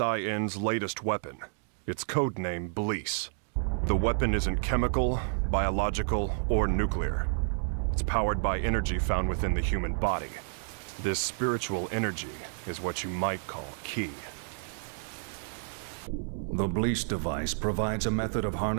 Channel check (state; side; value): silent; left; digital silence